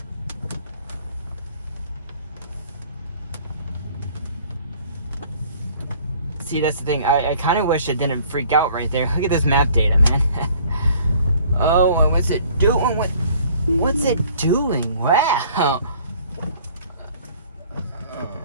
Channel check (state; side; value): inverted; both; correlation -0.54